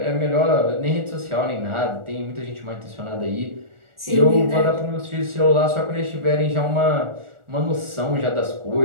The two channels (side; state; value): left; late; 1.4 ms